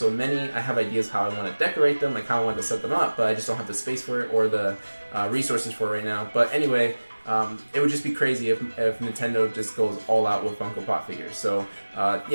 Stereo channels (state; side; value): inverted; both; correlation -1.00